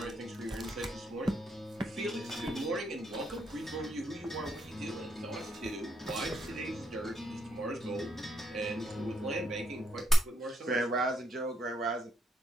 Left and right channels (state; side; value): normal; both; correlation 0.75